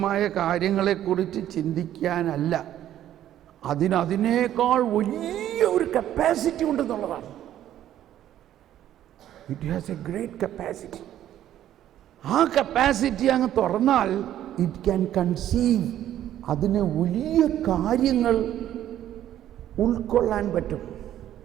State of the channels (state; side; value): quieter; left; 11.9 dB